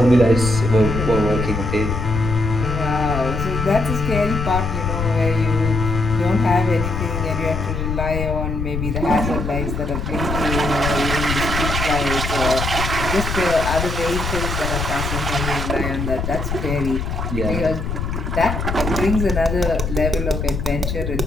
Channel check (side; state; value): left; noise; rumble, 3 dB below the sound